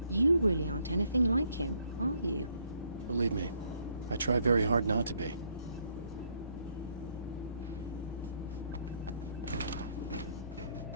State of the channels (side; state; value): both; inverted; correlation -0.70